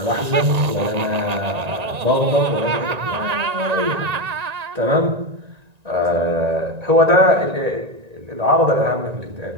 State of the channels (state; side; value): late; left; 1.9 ms